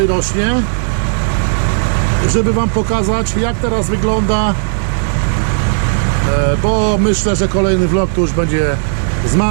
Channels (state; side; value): silent; left; digital silence